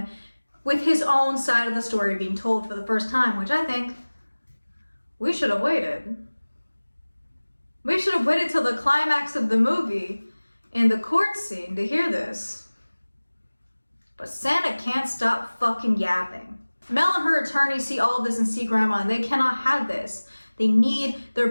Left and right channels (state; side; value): inverted; both; correlation -1.00